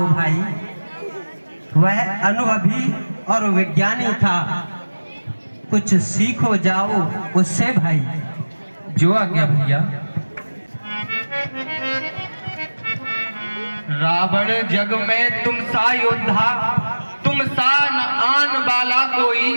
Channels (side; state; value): both; inverted; correlation -1.00